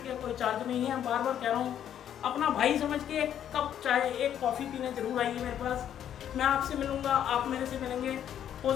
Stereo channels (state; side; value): quieter; right; 10.0 dB